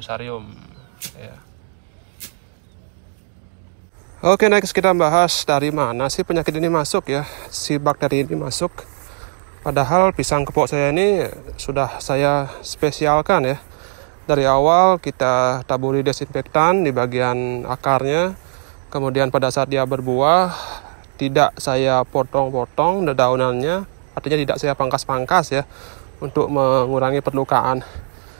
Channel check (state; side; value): silent; left; digital silence